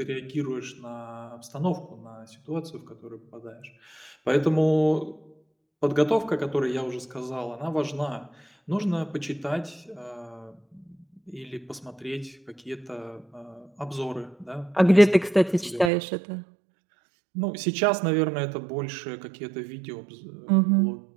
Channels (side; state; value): left; drops out; at 15.9 s